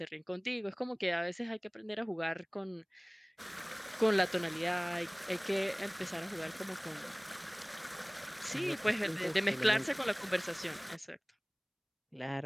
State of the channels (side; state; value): both; identical; correlation 1.00